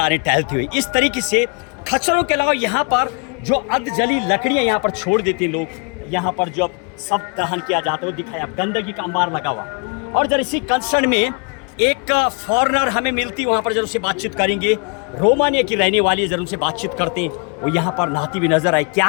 रहे टहलते हुए। इस तरीके से खच्चरों के अलावा यहाँ पर जो अर्धजली लकड़ियाँ यहाँ पर छोड़ देते हैं लोग, यहाँ पर जब सब दहन किया जाता है, दिखाया गंदगी का अंबार लगा हुआ। और जरा इसी कंसर्न में एक फॉरेनर हमें मिलती, वहाँ पर जरूर से बातचीत करेंगे। रोमानिया की रहने वाली है, जरूर से बातचीत करते हैं। वो यहाँ पर नहाती हुई नजर आए,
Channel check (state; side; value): quieter; right; 36.1 dB